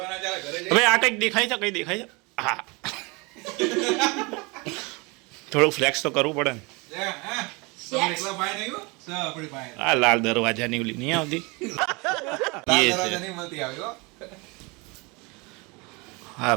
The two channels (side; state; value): left; quieter; 27.4 dB